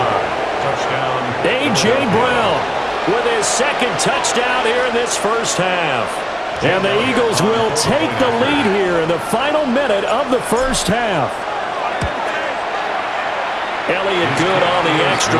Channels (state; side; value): identical; both; correlation 1.00